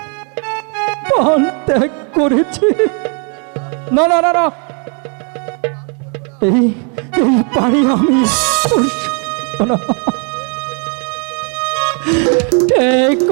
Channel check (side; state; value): left; quieter; 38.3 dB